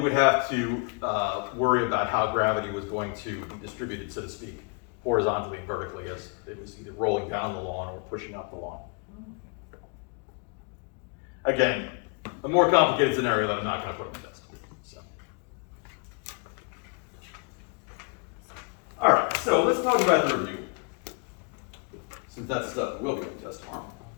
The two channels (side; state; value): right; quieter; 34.0 dB